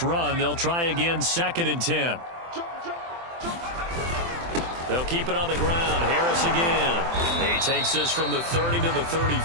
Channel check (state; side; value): late; left; 24 ms